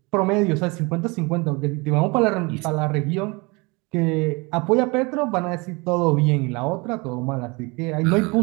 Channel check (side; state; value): left; quieter; 27.1 dB